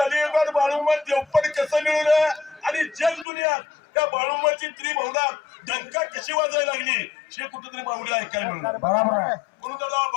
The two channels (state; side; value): drops out; right; at 3.2 s